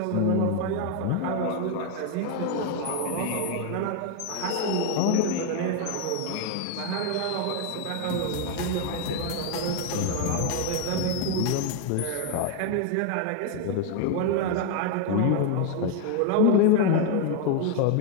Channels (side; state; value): both; different; correlation 0.01